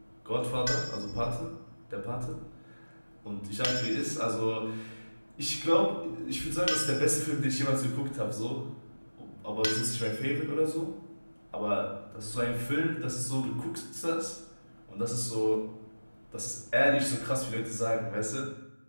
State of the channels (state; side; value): inverted; both; correlation -1.00